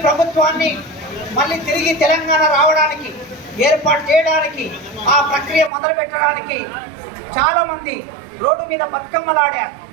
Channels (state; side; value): drops out; left; at 5.7 s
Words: ప్రభుత్వాన్ని మళ్ళీ తిరిగి తెలంగాణ రావడానికి, ఏర్పాటు చేయడానికి, ఆ ప్రక్రియ మొదలు పెట్టడానికి చాలామంది రోడ్డు మీద బతుకమ్మలాడారు,